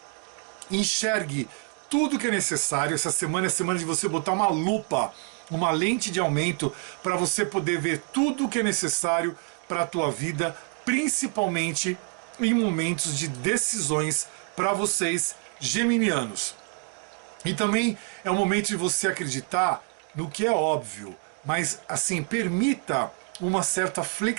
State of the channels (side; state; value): left; quieter; 34.3 dB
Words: Enxergue tudo que é necessário. Essa semana é a semana de você botar uma lupa uma lente de aumento para você poder ver tudo o que é necessário para a tua vida, principalmente em momentos de decisões para vocês geminianos. E também é o momento de você acreditar no que é óbvio, mas assim, permita uma certa